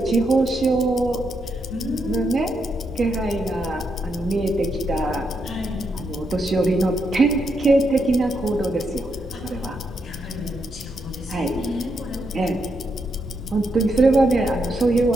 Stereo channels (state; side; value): normal; both; correlation 0.81